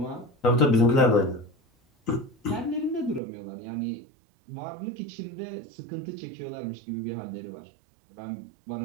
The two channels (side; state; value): left; drops out; at 3.2 s